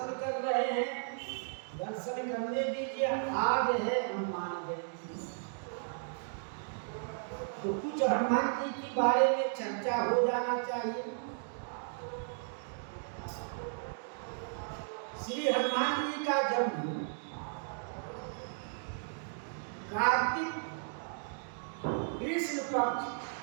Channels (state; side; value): silent; left; digital silence